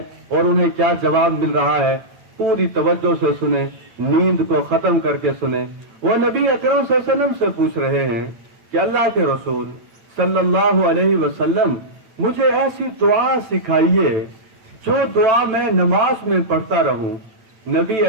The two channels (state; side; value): late; left; 8.7 ms